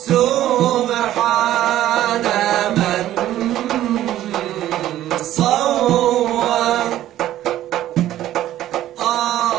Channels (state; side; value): quieter; left; 13.2 dB